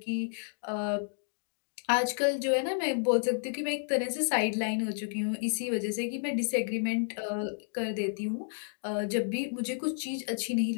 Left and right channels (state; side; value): silent; right; digital silence